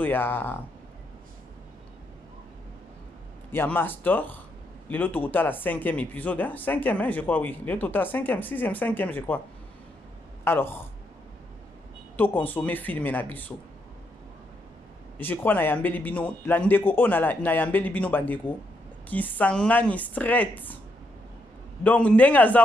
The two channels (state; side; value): normal; both; correlation 0.78